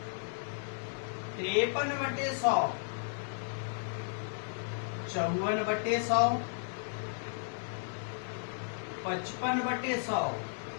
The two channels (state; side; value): silent; right; 55 dB below the other